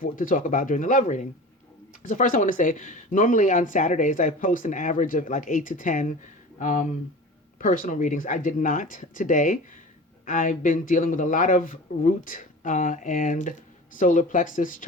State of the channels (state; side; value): normal; both; correlation 0.36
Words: to talk about during the love reading. So first, I want to say, normally on Saturdays I post an average of like 8 to 10 personal readings. I did not today. I've been dealing with a lot of root and solar plexus